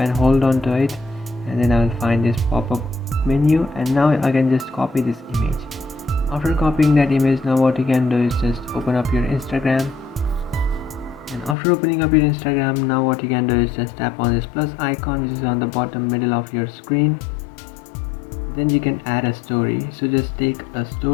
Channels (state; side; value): drops out; right; at 11.6 s